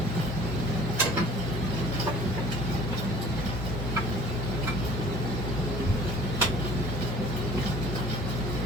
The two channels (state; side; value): normal; both; correlation 0.50